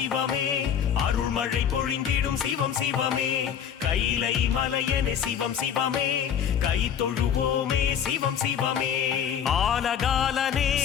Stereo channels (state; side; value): quieter; right; 8.5 dB